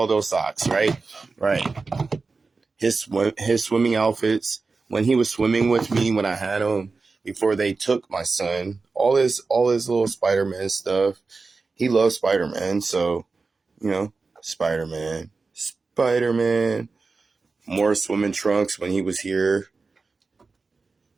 those socks, right? Right. His swimming outfits, when he was swimming with me, when I had him, before they took my son, all his little Spider-Man stuff. He loves Spider-Man, so, Spider-Man. More swimming trunks when he was here.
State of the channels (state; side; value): quieter; left; 4.1 dB